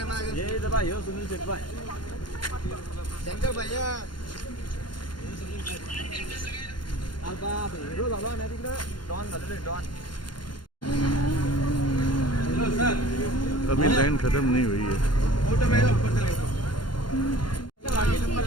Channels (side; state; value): right; late; 0.71 ms